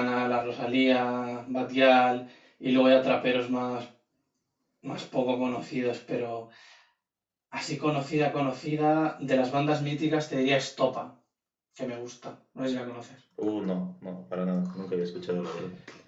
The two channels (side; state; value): both; identical; correlation 1.00